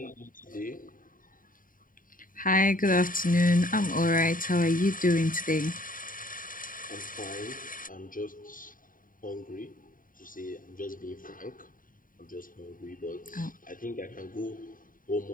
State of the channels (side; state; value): right; late; 0.40 ms